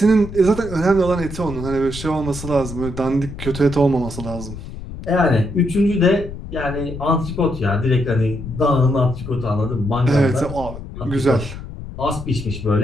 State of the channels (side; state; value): left; noise; rumble, 10 dB below the sound